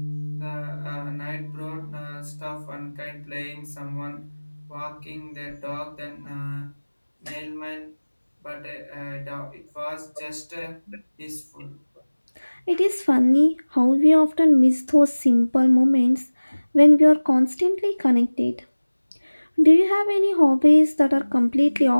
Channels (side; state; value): both; inverted; correlation -1.00